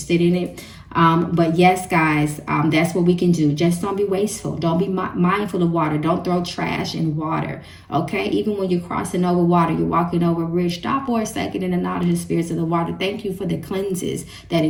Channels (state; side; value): identical; both; correlation 1.00